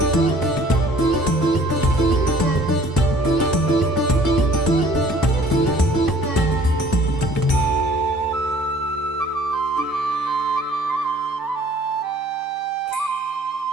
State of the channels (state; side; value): normal; both; correlation 0.54